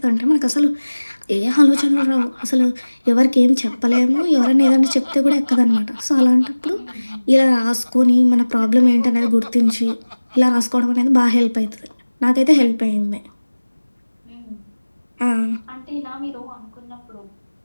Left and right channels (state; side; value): inverted; both; correlation -1.00